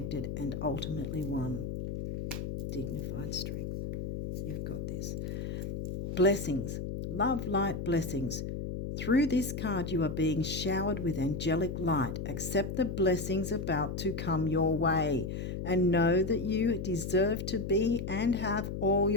and ultimately one. Dignified strength. You've got this. Blessings. Love, light, blessings. Through this card you are being showered with angelic light. Accept the blessings about to come your way and know that you deserve to be and have all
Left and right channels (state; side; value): noise; left; hum, 4 dB below the sound